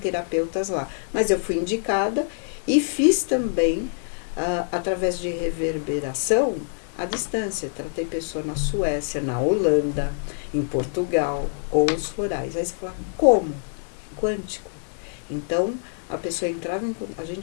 lá. Mas eu fui indicada e fiz também, através de reverberação, à distância. Tratei pessoa na Suécia, na Holanda, em Portugal, com os florais. Aí você fala: como? Quântico. Então, a pessoa entrava a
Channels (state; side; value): silent; right; digital silence